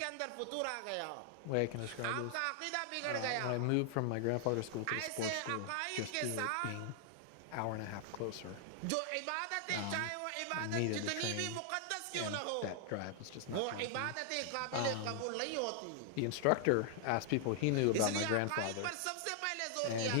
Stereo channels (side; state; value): both; different; correlation 0.00